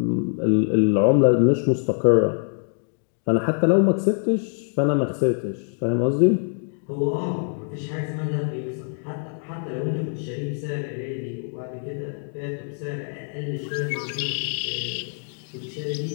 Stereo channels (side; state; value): right; silent; 62 dB below the other